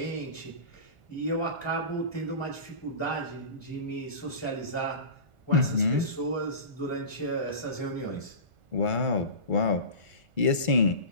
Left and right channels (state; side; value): late; left; 1.4 ms